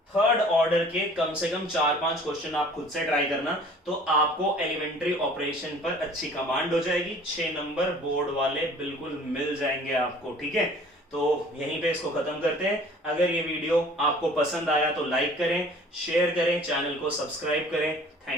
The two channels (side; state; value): both; normal; correlation 0.50